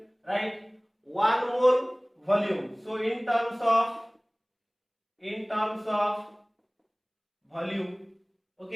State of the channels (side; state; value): both; identical; correlation 1.00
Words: write 1 mole volume. So in terms of volume.